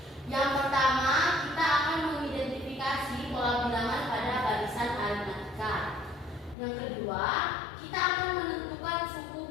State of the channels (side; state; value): right; drops out; at 6.6 s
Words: Yang pertama, kita akan mengidentifikasi pola bilangan pada barisan aritmatika. Yang kedua, kita akan menentukan